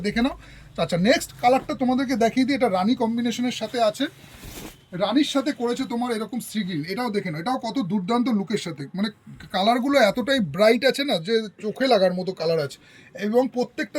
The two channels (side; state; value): both; identical; correlation 1.00